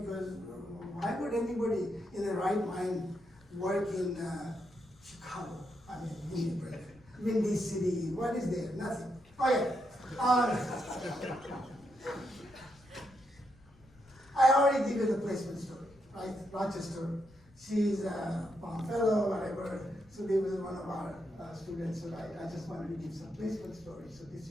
why would anybody in their right mind work in Chicago? I mean, Windy City, what is there? Nothing. Okay. I already give you the placement story, right? Rochester, she's a Palm Fellow, whatever. So they was one of our students, so I just wanted to give some placement story. So this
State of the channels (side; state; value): left; noise; rumble, 26 dB below the sound